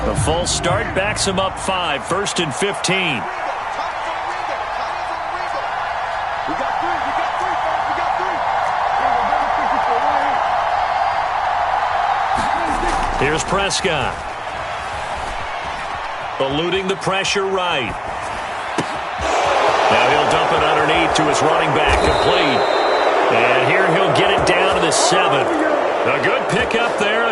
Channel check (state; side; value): identical; both; correlation 1.00